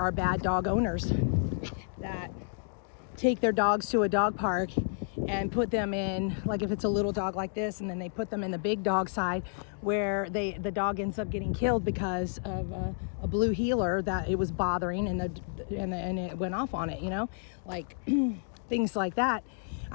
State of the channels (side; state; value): right; silent; digital silence